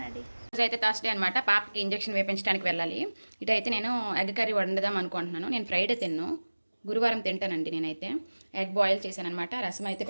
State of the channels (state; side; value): inverted; both; correlation -1.00